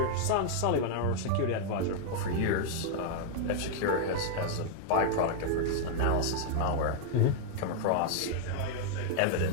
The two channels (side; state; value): both; different; correlation 0.00